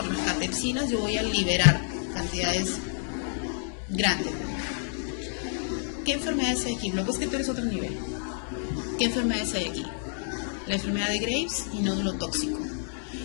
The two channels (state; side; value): silent; right; 59 dB below the other